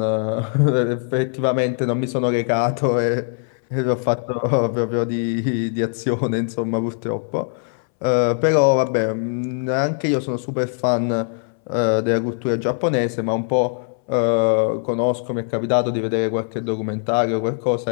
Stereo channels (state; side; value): silent; right; 65 dB below the other